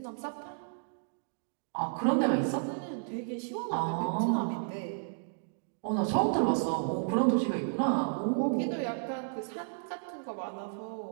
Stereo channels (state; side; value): silent; left; digital silence